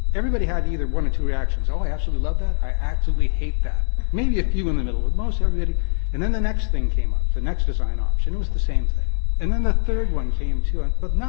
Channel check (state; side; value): silent; right; digital silence